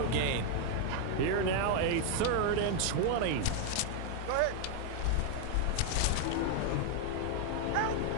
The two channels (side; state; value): both; different; correlation 0.00